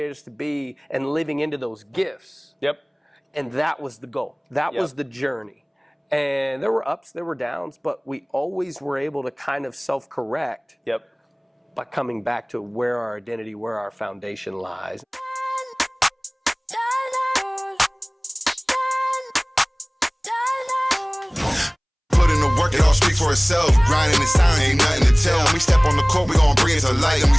us to be and living into those gifts. Yep. And that was the goal. That was the journey. And there were ups, there were downs, but we always were able to kind of self-correct by coming back to where our identity, where our foundation lies. Work it all speak for itself. Grinding in silence, ain't nothing to tell. When we step on the court, we gon' bring it to light. And we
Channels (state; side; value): identical; both; correlation 1.00